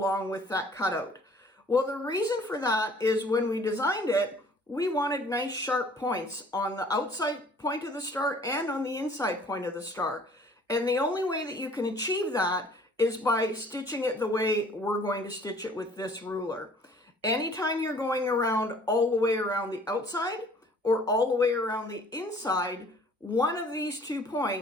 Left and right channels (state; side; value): normal; both; correlation 0.54